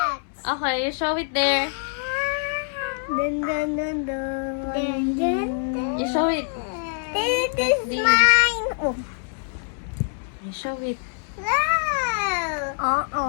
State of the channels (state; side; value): silent; right; 62 dB below the other